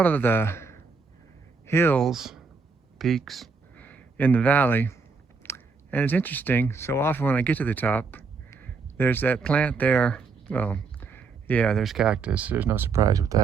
of the hills, peaks in the valley. And it's interesting, so often when I get to the top, there's that plant there. Well, yeah, there's cactus. There's no surprise with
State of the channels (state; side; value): quieter; left; 4.9 dB